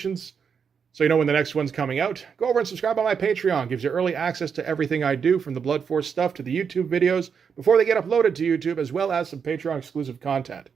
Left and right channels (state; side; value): quieter; left; 6.6 dB